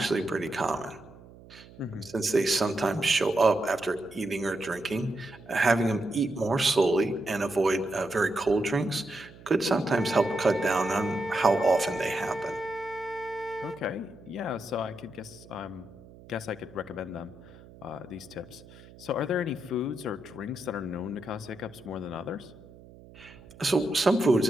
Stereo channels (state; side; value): noise; right; hum, 21 dB below the sound